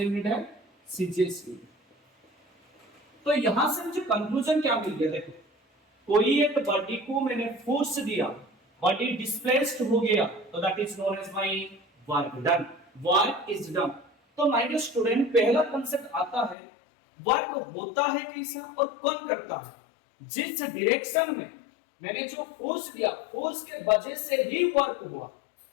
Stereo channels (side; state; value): right; drops out; at 16.6 s